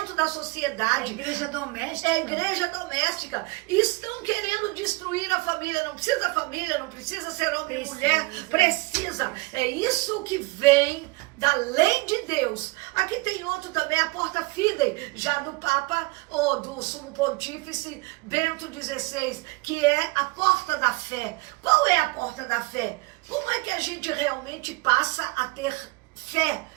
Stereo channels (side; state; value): left; quieter; 25.0 dB